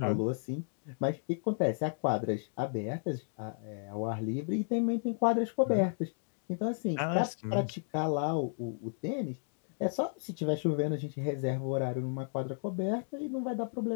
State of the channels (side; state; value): right; silent; digital silence